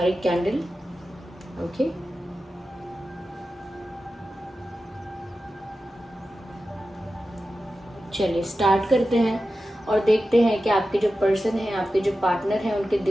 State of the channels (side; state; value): both; normal; correlation 0.93